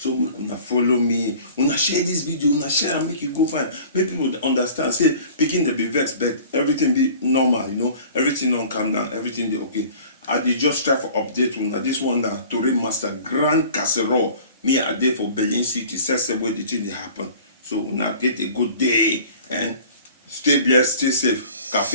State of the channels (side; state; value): both; inverted; correlation -0.46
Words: una follow me, una share this video, una share and make you go find. Make people understand. Say picking the be vexed, but everything be normal, you know. Everything don't calm down, everything be okay. I did just try for update una. This one na Tori Master Grand Casserole. Me I did for Berlin City. Says where the thing happen. So una get a good day and stay blessed, stay safe.